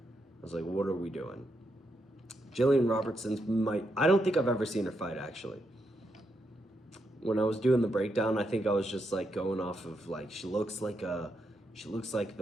was like, what are we doing? Jillian Robertson's I don't think I've ever seen her fight, actually. When I was doing the breakdown, I think I was just like going off of like, she looks like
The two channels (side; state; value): both; normal; correlation 0.82